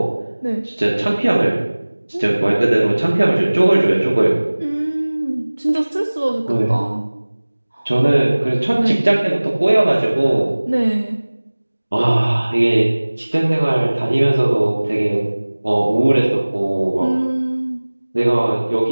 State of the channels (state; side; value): inverted; both; correlation -1.00